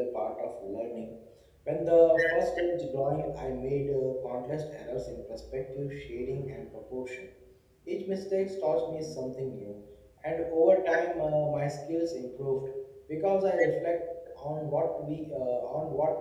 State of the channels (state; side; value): identical; both; correlation 1.00